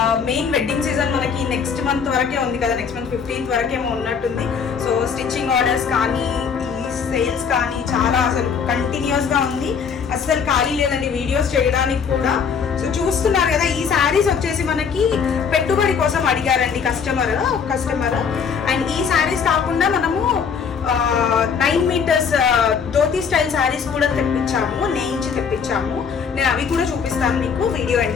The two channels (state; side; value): quieter; right; 6.4 dB